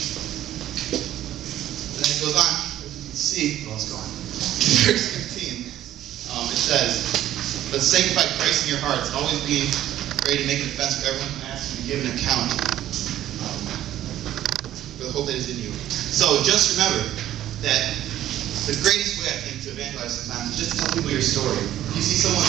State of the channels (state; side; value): quieter; left; 12.7 dB